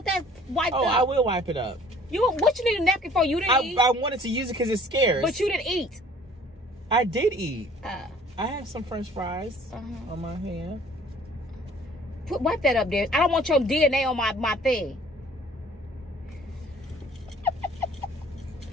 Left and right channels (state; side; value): normal; both; correlation 0.53